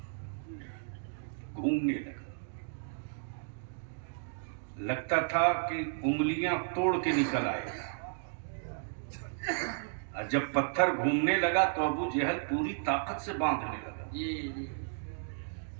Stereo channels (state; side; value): silent; left; digital silence